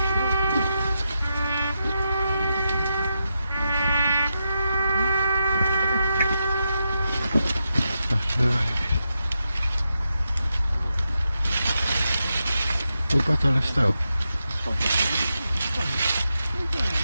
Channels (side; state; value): both; inverted; correlation -0.87